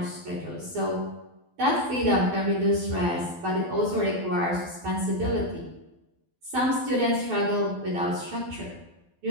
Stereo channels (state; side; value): late; left; 12 ms